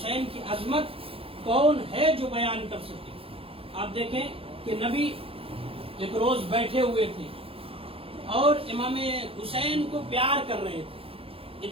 کی عظمت کون ہے جو بیان کر سکے. آپ دیکھیں کہ نبی ایک روز بیٹھے ہوئے تھے اور امام حسین کو پیار کر رہے تھے.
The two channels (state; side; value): late; left; 0.27 ms